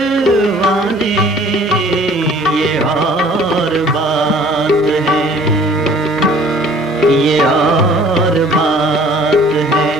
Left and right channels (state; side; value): normal; both; correlation 0.52